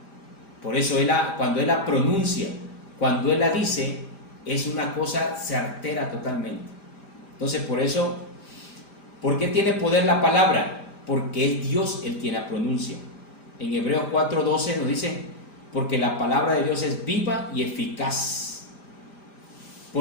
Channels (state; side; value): late; right; 5.0 ms